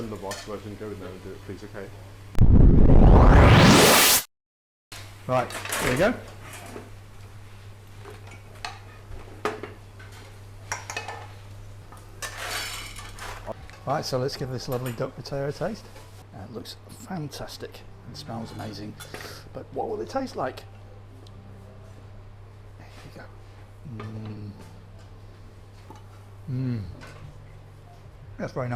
than the box version, go in there and do it, please, okay? Right, here we go. Right, so let's give this lovely duck potato a taste. It looks fantastic and smells amazing, but what will it taste like? There you go. That's very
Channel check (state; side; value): identical; both; correlation 1.00